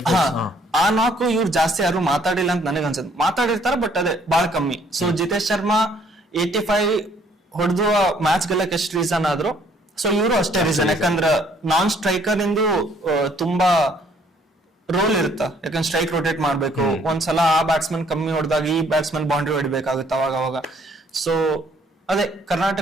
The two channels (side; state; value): both; normal; correlation 0.63